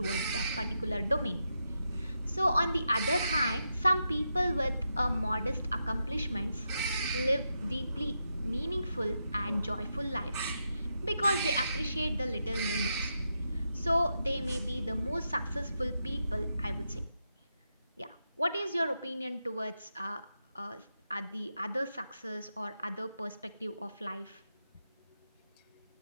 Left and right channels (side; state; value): both; inverted; correlation -0.85